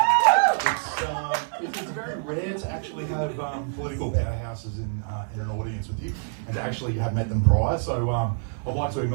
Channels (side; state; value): left; silent; 57 dB below the other